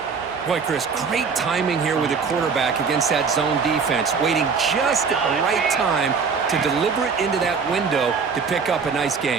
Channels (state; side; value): quieter; left; 5.5 dB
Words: Boy, Chris, great timing here with the quarterback against that zone defense, waiting just at the right time to deliver it into that window to pick up a nice